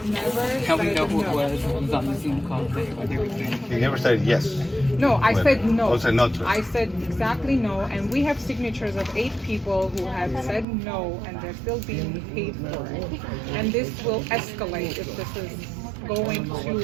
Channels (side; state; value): left; drops out; at 10.7 s